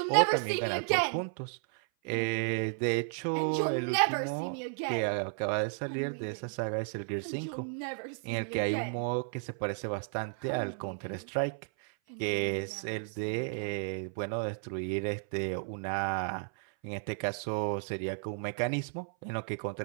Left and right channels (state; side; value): silent; left; 56 dB below the other